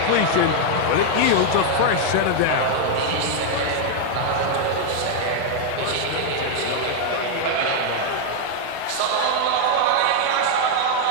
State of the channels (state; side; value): different; both; correlation 0.00